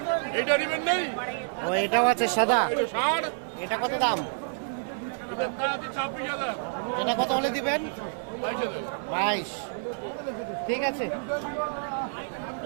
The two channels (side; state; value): left; silent; 59 dB below the other